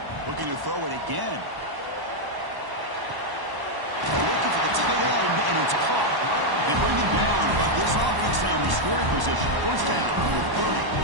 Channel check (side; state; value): left; late; 1.0 ms